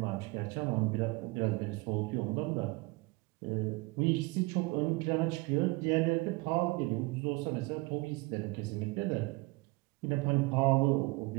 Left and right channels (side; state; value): left; quieter; 24.6 dB